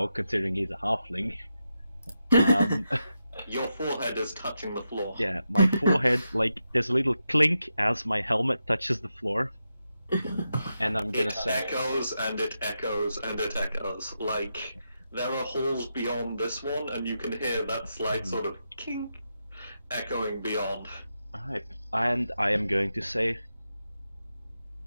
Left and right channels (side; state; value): both; inverted; correlation -0.87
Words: considering he's a halfling. Your forehead is touching the floor. Yeah, my forehead, like, there's a little clink as my helmet touches the floor. And I'm gonna It say... echoes and it echoes and it echoes. Like, there are halls beyond this one, and you can hear that slight sort of kink echoing beyond. Alright, and I am going to say...